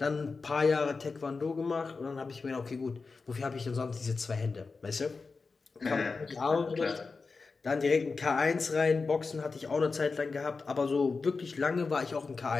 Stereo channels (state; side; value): quieter; right; 4.4 dB